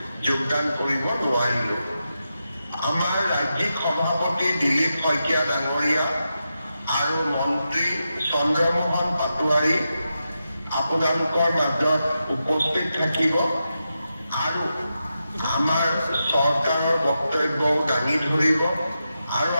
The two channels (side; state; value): both; inverted; correlation -0.88